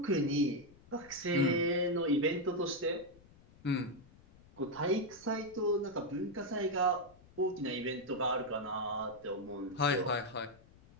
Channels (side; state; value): left; noise; rumble, 25 dB below the sound